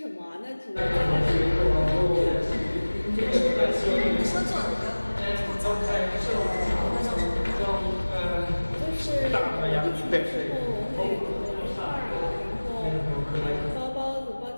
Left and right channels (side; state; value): both; inverted; correlation -1.00